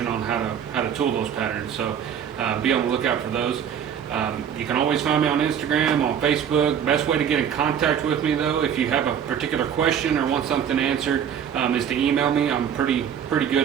on how to tool those patterns. So be on the lookout for those. You can always find me on Instagram, on Facebook. Best way to get in contact with me though, if you have a particular question or want something answered, is to email me. I'm pretty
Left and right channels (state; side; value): quieter; left; 8.5 dB